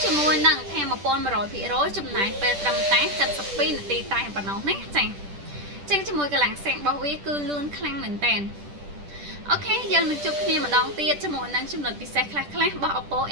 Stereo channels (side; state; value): left; late; 10 ms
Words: ជាមួយនឹងថាមពល 100% ចំណាយពេលត្រឹមតែ 72 នាទីតែប៉ុណ្ណោះណាចា៎ចឹងជាមួយកម្លាំងសាករបស់វាគឺលឿនខ្លាំងមែនតើអូខេយើងនឹងជួបគ្នាម្ដងទៀតជាមួយនឹងចំណុចពិសេសខ្លះៗរបស់ Oppo